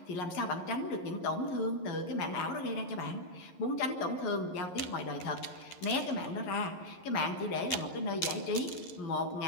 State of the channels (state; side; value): late; right; 11 ms